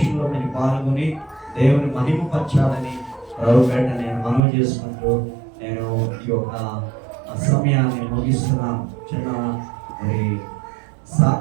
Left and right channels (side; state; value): left; drops out; at 4.4 s